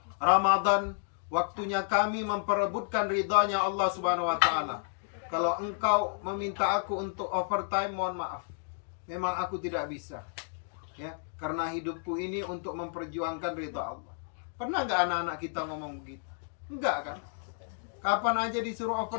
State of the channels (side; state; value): right; silent; digital silence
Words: Ramadan waktunya kami memperebutkan ridhonya Allah Subhanahu wa taala. Kalau engkau meminta aku untuk overtime, mohon maaf. Memang aku tidak bisa. Ya, karena hidupku ini untuk memperjuangkan ridha Allah." Pernah nggak anak-anak kita ngomong begitu? Enggak kan? Kapan aja disuruh